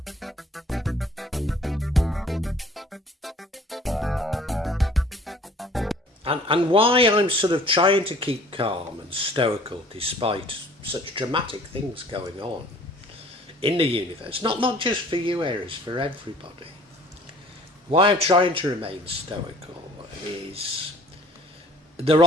And why I'm sort of trying to keep calm and stoical despite such dramatic things going on in the universe, not just for you, Aries, for everybody. Why I'm trying to remain stoical is there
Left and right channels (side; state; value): both; normal; correlation 0.52